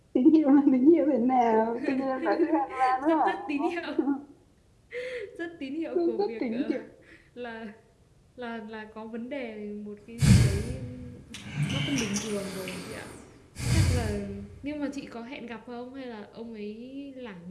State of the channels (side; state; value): both; identical; correlation 1.00